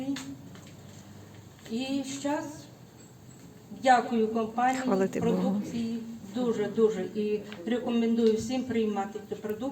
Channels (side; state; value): both; identical; correlation 1.00